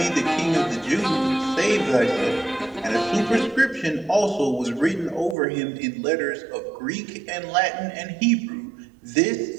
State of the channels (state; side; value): drops out; left; at 5.4 s